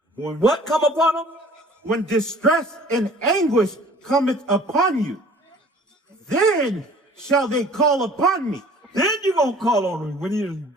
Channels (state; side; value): normal; both; correlation 0.50